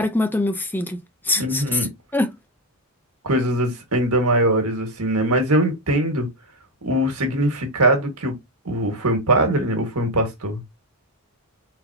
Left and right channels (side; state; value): both; normal; correlation 0.12